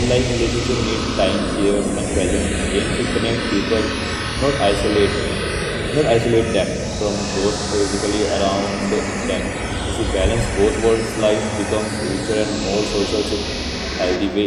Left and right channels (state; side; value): identical; both; correlation 1.00